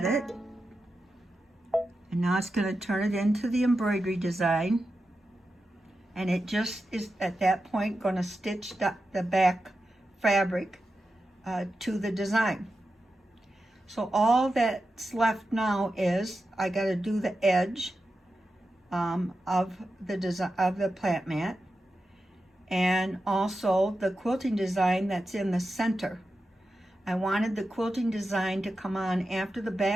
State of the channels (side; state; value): both; normal; correlation 0.90